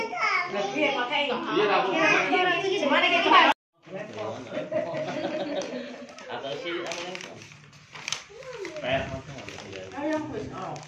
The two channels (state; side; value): identical; both; correlation 1.00